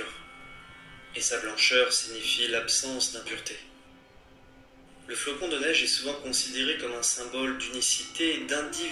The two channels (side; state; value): both; identical; correlation 1.00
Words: Et sa blancheur signifie l'absence d'impureté. Le flocon de neige est souvent considéré comme un symbole d'unicité et